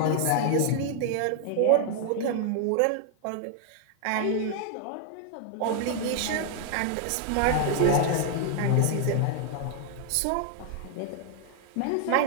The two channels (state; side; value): different; both; correlation 0.00